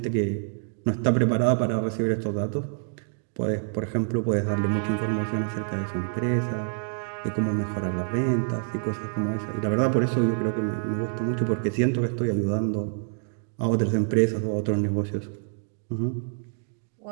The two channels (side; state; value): left; silent; digital silence